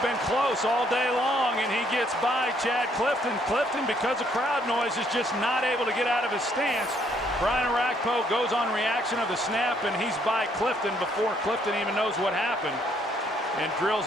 been close all day long, and he gets by Chad Clifton. Clifton, because of crowd noise, is just not able to get out of his stance. Brian Orakpo goes on reaction of the snap, and he's by Clifton before Clifton even knows what happened, and drills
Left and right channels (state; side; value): normal; both; correlation 0.68